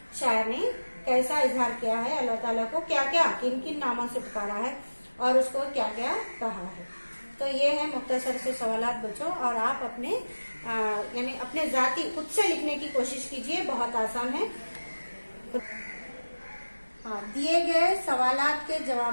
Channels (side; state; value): both; inverted; correlation -1.00